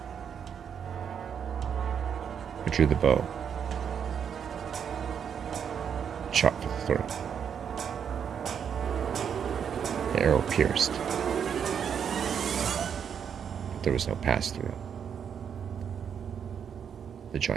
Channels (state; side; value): quieter; left; 7.7 dB